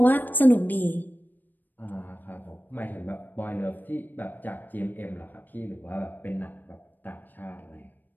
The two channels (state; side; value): late; right; 0.089 ms